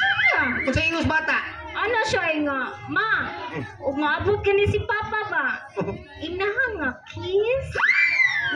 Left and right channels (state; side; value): identical; both; correlation 1.00